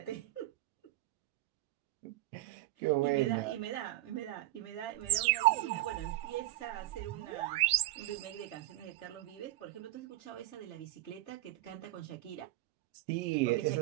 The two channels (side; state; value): left; quieter; 16.3 dB